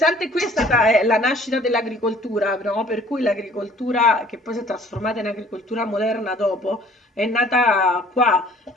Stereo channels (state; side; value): normal; both; correlation 0.54